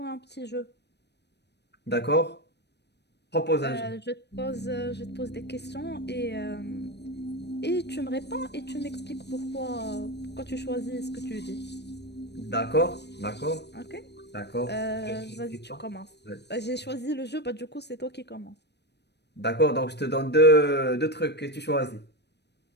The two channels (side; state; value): right; late; 0.49 ms